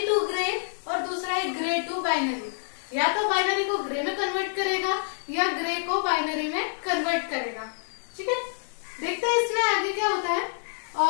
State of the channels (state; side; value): silent; right; digital silence